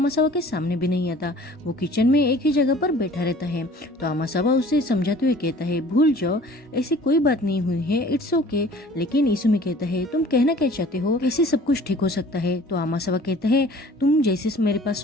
के सामने भी नहीं आता। वो किचन में एक ही जगह पर बैठा रहता है। तो आमासावा उसे समझाते हुए कहता है, भूल जाओ, ऐसी कोई बात नहीं हुई है, इट्स ओके। लेकिन इसुमी कहता है, तुम कहना क्या चाहते हो, कैसे सब कुछ ठीक हो सकता है। तो आमासावा कहता है, तुम जैसे मेरे पास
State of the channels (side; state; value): both; normal; correlation 0.49